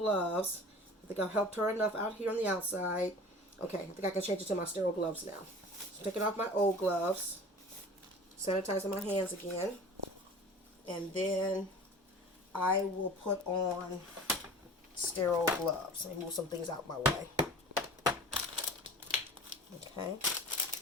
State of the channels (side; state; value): both; normal; correlation 0.40